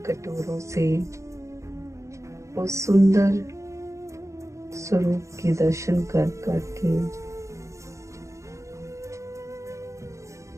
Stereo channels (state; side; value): late; left; 0.15 ms